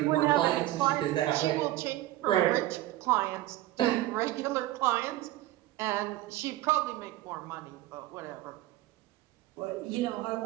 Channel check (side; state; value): left; quieter; 15.8 dB